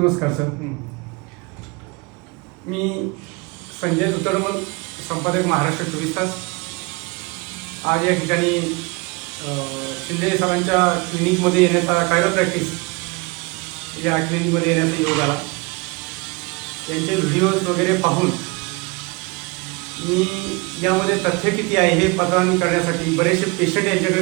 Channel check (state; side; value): quieter; left; 27.2 dB